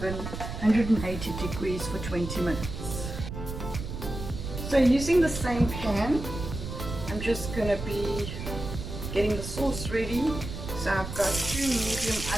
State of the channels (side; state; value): right; noise; rumble, 7 dB below the sound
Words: 180 degrees for 20 minutes. So using the same pan, I'm just going to be getting the sauce ready. So I've got 2 medium